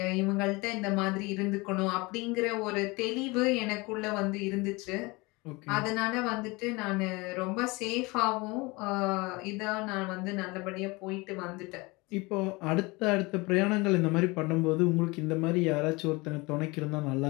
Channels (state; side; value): quieter; right; 24.7 dB